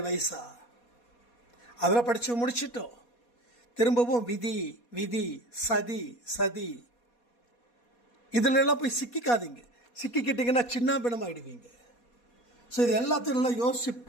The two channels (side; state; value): right; late; 4.2 ms